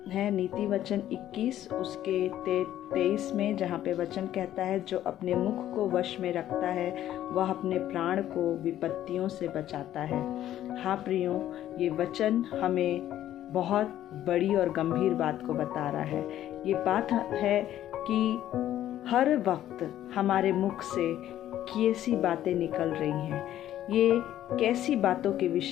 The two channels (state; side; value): quieter; right; 12.4 dB